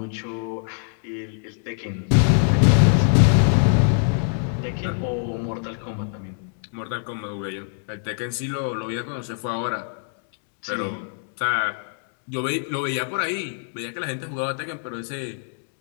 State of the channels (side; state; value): right; silent; digital silence